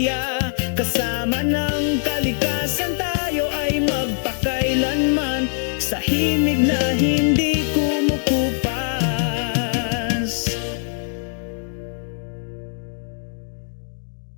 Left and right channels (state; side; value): silent; right; digital silence